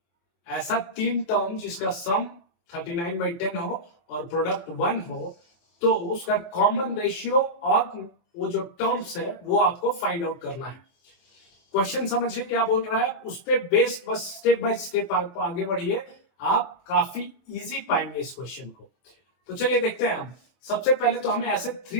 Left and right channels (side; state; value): right; late; 24 ms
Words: ऐसा तीन टर्म जिसका सम 39/10 हो और प्रोडक्ट 1 हो, तो उसका कॉमन रेशियो और वो जो टर्म्स है वो आपको फाइंड आउट करना है। क्वेश्चन समझिए क्या बोल रहा है, उस पे बेस्ड बस स्टेप बाय स्टेप आप आगे बढ़िए, आप काफी इजी पाएंगे इस क्वेश्चन को। तो चलिए देखते हैं हम। सबसे पहले तो हमें ऐसे